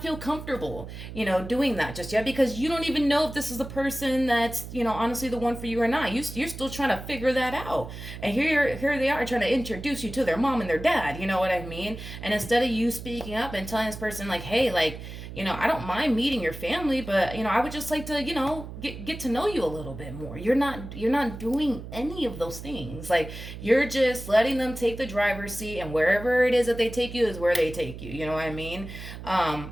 feel comfortable, doing that just yet because you don't even know if this is the person that's, honestly the one for you or not. You're still trying to figure that out. And here they are trying to introduce you to their mom and their dad, you know what I mean? And instead of you speaking up and telling this person, like, hey, like, I don't mind meeting your family, but, I would just like to, get to know you a little bit more. You're not doing any of those things. Like, you're just letting them take the driver's seat, and wherever it is that they take you is where they take you. You know what I mean?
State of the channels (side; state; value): right; noise; hum, 11 dB below the sound